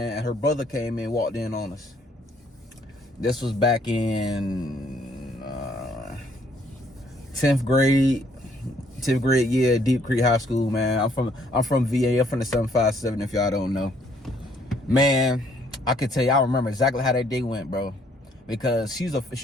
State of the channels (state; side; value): normal; both; correlation 0.65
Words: and her brother came in, walked in on us. This was back in 10th grade year, Deep Creek High School, man. I'm from VA. I'm from the 757, if y'all don't know. Man, I can tell you, I remember exactly how that day went, bro. Because she was a